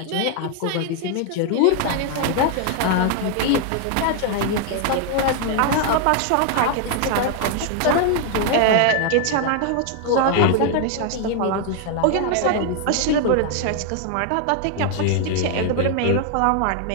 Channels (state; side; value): different; both; correlation 0.00